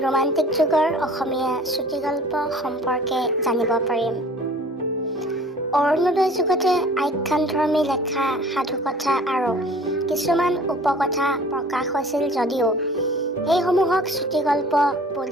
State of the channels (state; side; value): normal; both; correlation 0.48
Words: ৰোমান্টিক যুগৰ অসমীয়া চুটিগল্প সম্পৰ্কে জানিব পাৰিম। অৰুণোদয় যুগতে আখ্যানধৰ্মী লেখা সাধুকথা আৰু কিছুমান উপকথা প্ৰকাশ হৈছিল যদিও সেইসমূহক চুটিগল্প